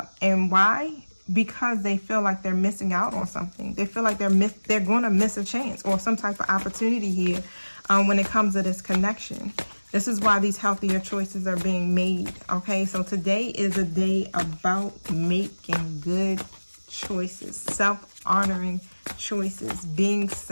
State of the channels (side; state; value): both; inverted; correlation -1.00